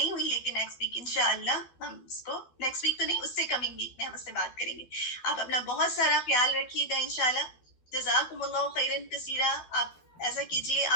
ہوئی, لیکن نیکسٹ ویک انشاءاللہ ہم اس کو, نیکسٹ ویک تو نہیں, اس سے کمنگ ویک میں ہم اس سے بات کریں گے. آپ اپنا بہت سارا خیال رکھیے گا انشاءاللہ. جزاکم اللہ خیرن کثیرہ. آپ ایسا کیجیے,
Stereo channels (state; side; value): late; right; 12 ms